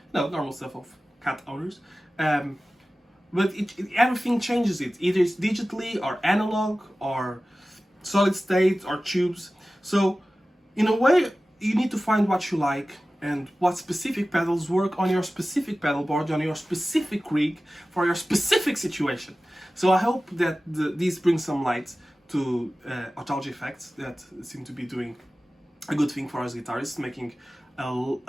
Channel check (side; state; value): both; normal; correlation 0.96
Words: No, normal stuff of cat owners. But everything changes it. Either it's digitally or analog or solid state or tubes. So in a way, you need to find what you like and what specific pedals work on your specific pedal board, on your specific rig, for your specific situation. So I hope that these bring some light to Otalgia effects that seem to be doing a good thing for us guitarists, making a